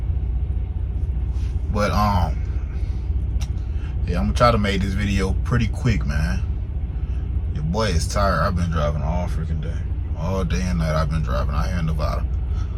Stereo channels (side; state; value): both; identical; correlation 1.00